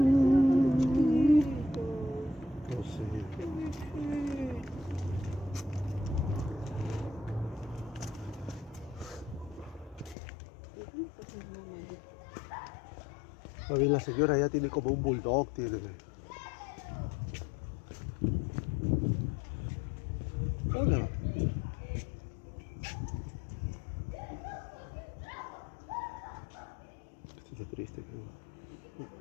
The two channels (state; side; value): drops out; right; at 10.2 s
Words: sé. Más bien la señora ya tiene como un bulldog, tiene. Hola. Esto está triste, creo. Esto